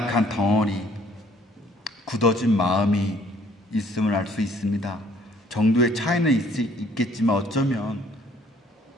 덩어리, 굳어진 마음이 있음을 알 수 있습니다. 정도의 차이는 있겠지만 어쩌면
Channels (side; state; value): both; normal; correlation 0.60